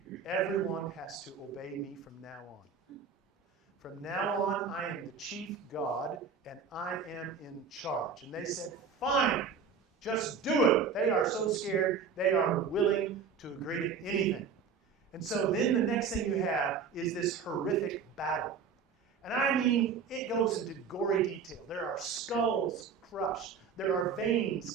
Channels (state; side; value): quieter; left; 5.9 dB